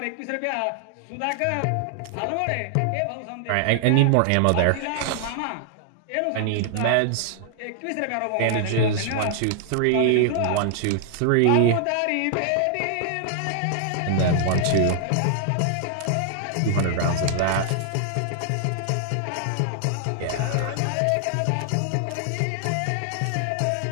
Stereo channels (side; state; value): both; different; correlation 0.00